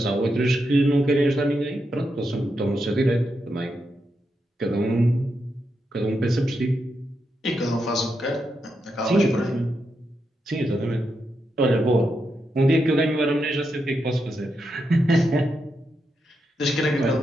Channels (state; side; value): normal; both; correlation 0.84